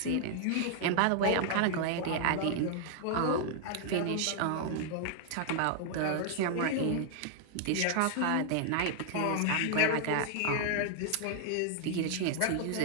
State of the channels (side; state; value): both; different; correlation 0.00